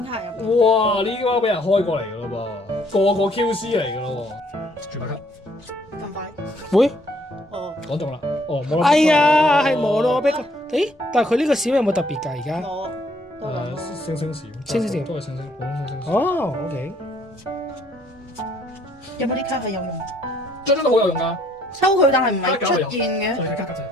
卡入邊。哇！呢啲包俾人開過嚟㗎咯噃，個 QC 嚟㗎咯喎。絕白卡，咁快？會？哦，講中啦。哦，冇啦。哎呀，係摩洛碧。誒，但係佢呢個閃有冇特別㗎？而家？我都諗星閃，星閃都係星，普通星。哦，OK。有冇啲卡係有用？張都好有用㗎。收佢，但係唔係出現嘅。係加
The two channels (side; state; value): both; normal; correlation 0.65